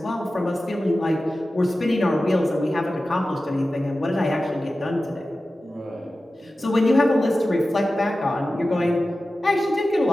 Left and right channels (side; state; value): both; normal; correlation 0.94